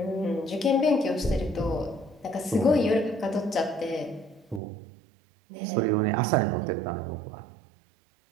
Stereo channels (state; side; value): drops out; left; at 4.6 s